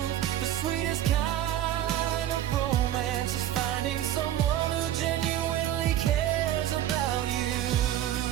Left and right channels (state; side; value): quieter; left; 12.1 dB